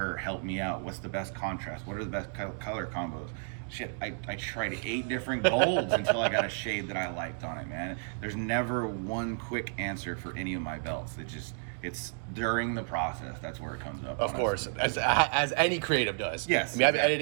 help me out. What's the best contrast? What are the best color combos? Shit, I tried 8 different golds until I got a shade that I liked on it, man. There's never one quick answer for any of my belts. It's during the process. That's where it comes up. Of course, as any creative does. Yes. I mean, I've been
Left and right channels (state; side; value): silent; left; digital silence